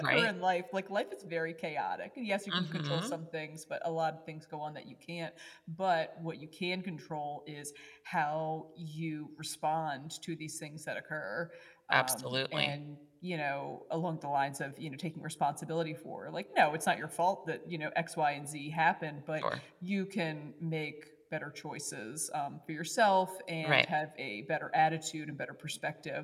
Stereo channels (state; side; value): identical; both; correlation 1.00